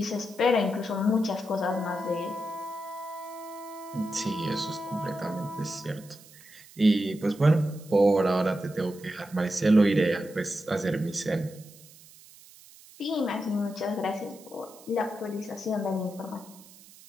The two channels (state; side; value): noise; right; hiss, 22 dB below the sound